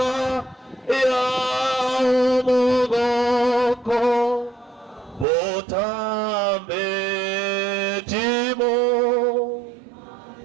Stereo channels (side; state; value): left; drops out; at 5.2 s